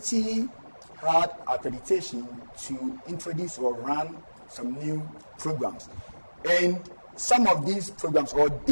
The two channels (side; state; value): both; inverted; correlation -1.00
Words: had accreditation to introduce or run some new programs. And some of these programs, or